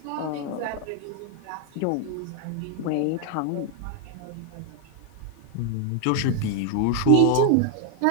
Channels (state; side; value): different; both; correlation 0.01